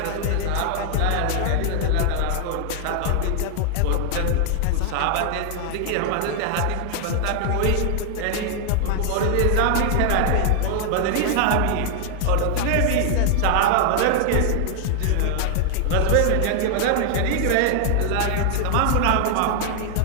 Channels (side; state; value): both; different; correlation 0.00